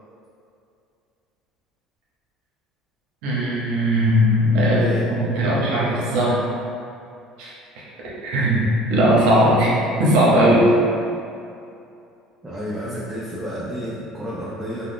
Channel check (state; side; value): normal; both; correlation 0.47